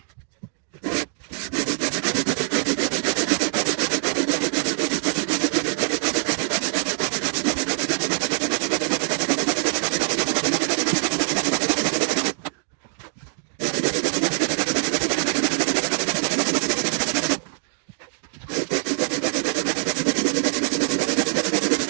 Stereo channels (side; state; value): left; silent; digital silence